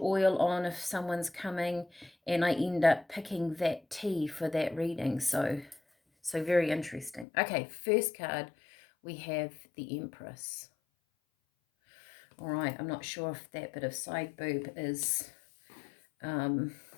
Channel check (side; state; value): right; drops out; at 7.2 s